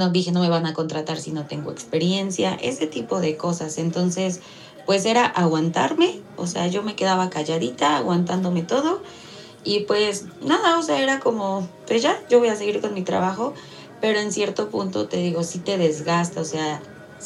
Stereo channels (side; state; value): both; identical; correlation 1.00